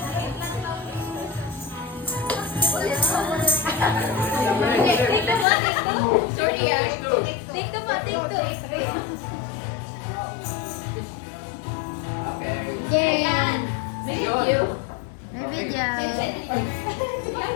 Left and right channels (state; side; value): drops out; right; at 5.5 s